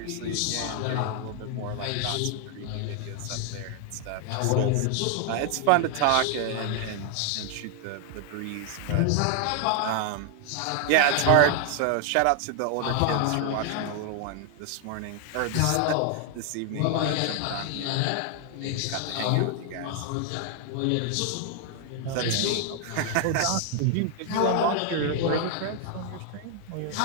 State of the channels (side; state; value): both; different; correlation 0.00